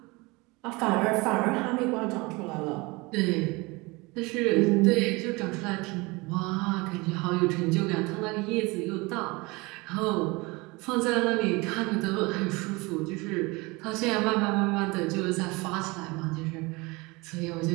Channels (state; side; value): quieter; left; 24.8 dB